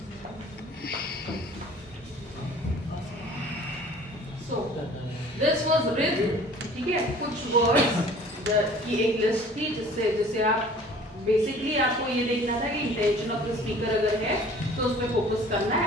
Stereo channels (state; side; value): normal; both; correlation 0.48